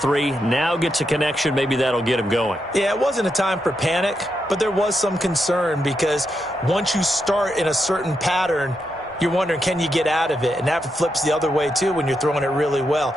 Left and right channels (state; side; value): normal; both; correlation 0.84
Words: Now gets a connection. Maybe that'll get him going. Yeah, it wasn't a time for panic, but there was some concern because once you start in a certain pattern, you're wondering, can you get out of it? And that flips the other way, too, when you're throwing it really well.